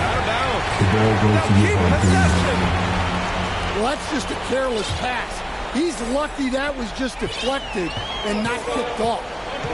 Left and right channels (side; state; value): both; identical; correlation 1.00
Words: of bounds. The ball goes to Keep possession. Well, that's just a careless pass. He's lucky that was just deflected and not kicked off.